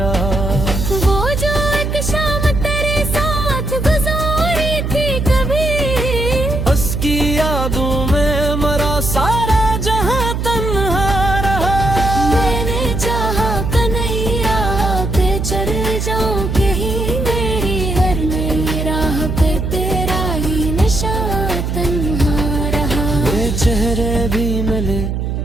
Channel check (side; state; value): right; noise; hum, 2 dB below the sound